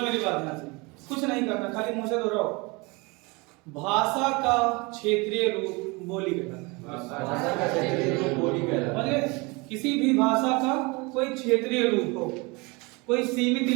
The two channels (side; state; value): left; quieter; 26.8 dB